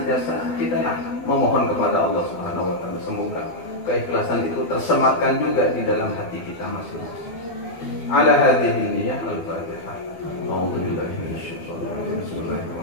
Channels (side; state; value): right; late; 12 ms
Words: kita memohon kepada Allah Subhanahu wa taala, semoga keikhlasan itu tersematkan juga di dalam hati kita masing-masing. Ala hadhihi niyyah al-Fatihah. A'udzubillahi minasyaitonir rajim.